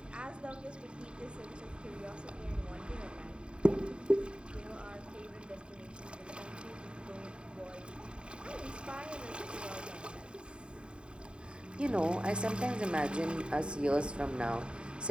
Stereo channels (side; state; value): left; late; 0.052 ms